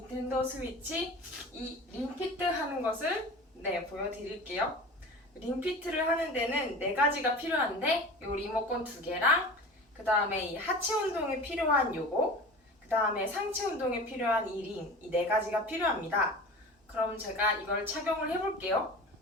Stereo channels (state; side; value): normal; both; correlation 0.35